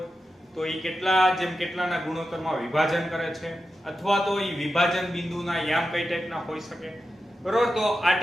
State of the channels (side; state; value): both; normal; correlation 0.91